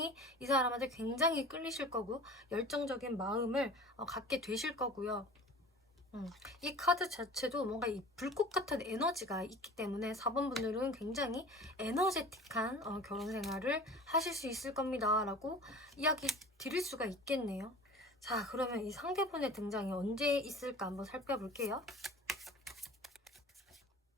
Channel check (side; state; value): both; normal; correlation 0.41